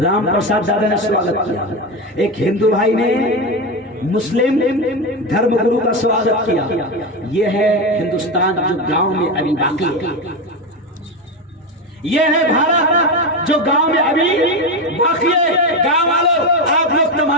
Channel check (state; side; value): normal; both; correlation 0.15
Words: پرساد دادا نے سواگت کیا، ایک ہندو بھائی نے مسلم دھرم گرو کا سواگت کیا۔ یہ ہے ہندوستان جو گاؤں میں ابھی باقی ہے، یہ ہے بھارت جو گاؤں میں ابھی باقی ہے۔ گاؤں والوں آپ لوگ